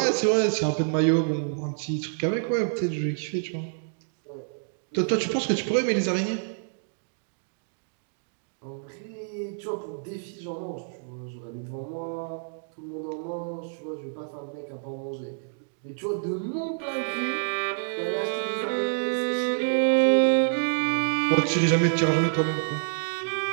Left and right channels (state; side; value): silent; left; digital silence